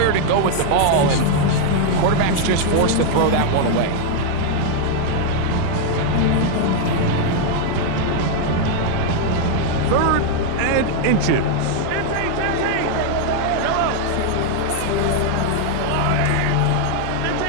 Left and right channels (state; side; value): different; both; correlation 0.00